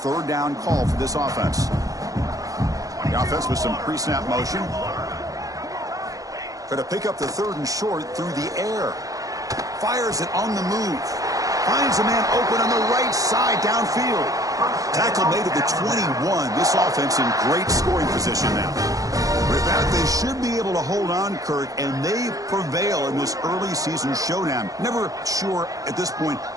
down call for this offense. The offense with some pre-snap motion. Try to pick up the 3rd and short through the air. Fires it on the move. Finds a man open on the right side downfield. Tackle made at the 21. This offense in great scoring position now. With that, they should be able to hold on, Kirk, and they prevail in this early season showdown. Never sure at this point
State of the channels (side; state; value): left; late; 0.17 ms